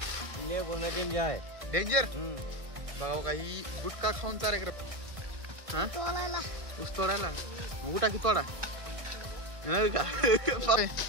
डेंजर आहे. डेंजर. बघा का ही गुटखा खाऊन चारे कर. हा ऊस तोडायला गुटा की तोडा नाही का?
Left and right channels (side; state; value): left; late; 1.6 ms